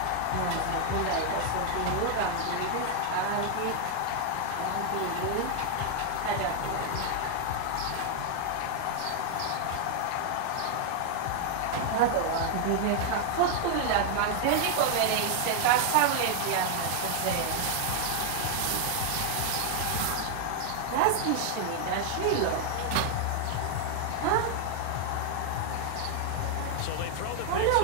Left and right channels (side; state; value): both; different; correlation 0.00